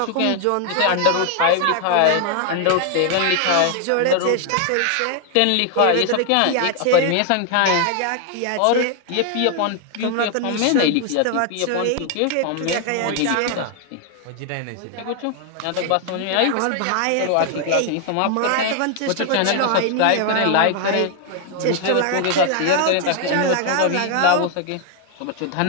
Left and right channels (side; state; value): both; different; correlation 0.00